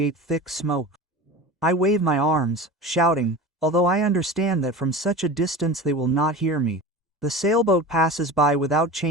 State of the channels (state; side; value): normal; both; correlation 0.32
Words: thick smoke. I wave my arms, shouting, although I understand that from such a distance they will not hear me. The sailboat passes by without